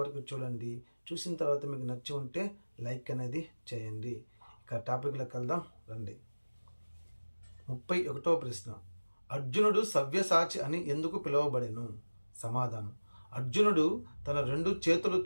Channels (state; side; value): inverted; both; correlation -1.00